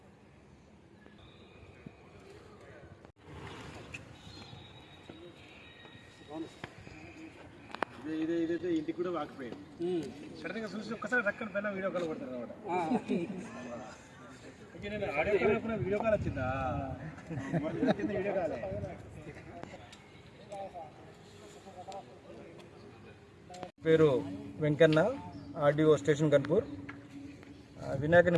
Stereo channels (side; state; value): both; identical; correlation 1.00